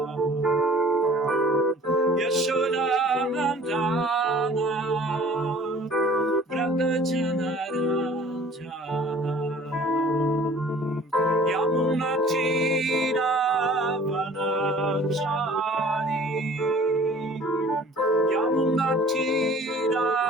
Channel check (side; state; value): both; normal; correlation 0.50